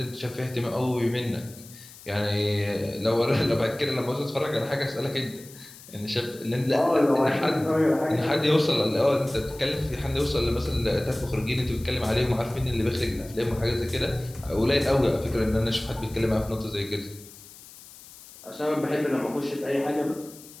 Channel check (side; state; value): left; noise; hiss, 19 dB below the sound